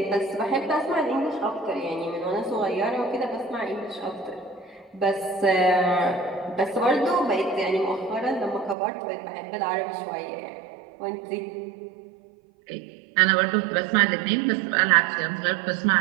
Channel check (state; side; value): drops out; left; at 8.8 s